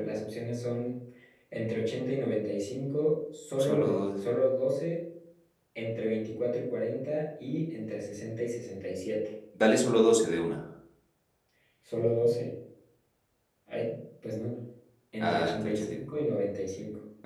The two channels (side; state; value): both; identical; correlation 1.00